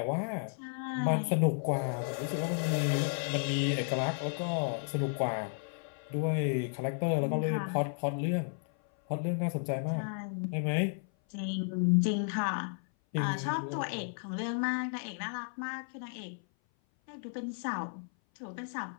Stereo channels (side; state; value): right; silent; 56 dB below the other